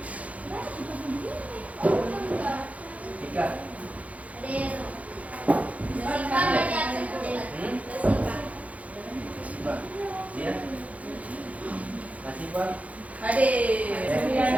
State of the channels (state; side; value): late; left; 0.067 ms